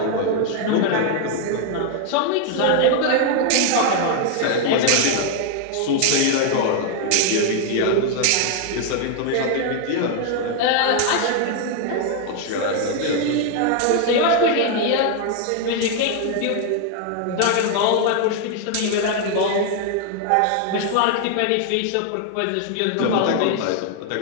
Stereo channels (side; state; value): both; different; correlation 0.00